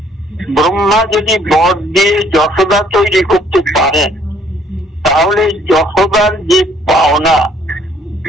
ব্রহ্মা যদি বর দিয়ে যশোদা তৈরি করতে পারেন, তাহলে যশোদার যে পাওনা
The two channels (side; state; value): both; normal; correlation 0.62